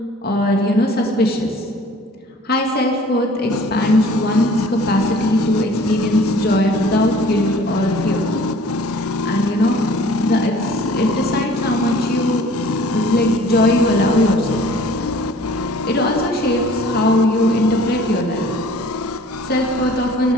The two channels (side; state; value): both; normal; correlation 0.50